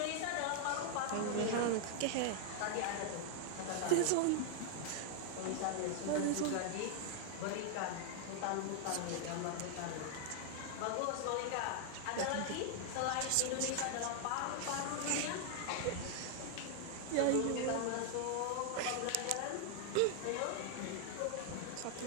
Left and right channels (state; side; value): different; both; correlation 0.00